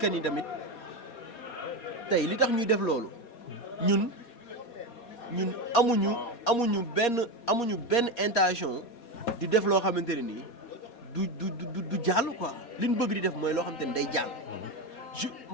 ni tamit tey li tax ñuy def loolu ñun amuñu benn intention di def loo xamante ne nii. du jàll quoi li ñu bëgg di def mooy loo xam te ne day jàll.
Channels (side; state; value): right; late; 4.2 ms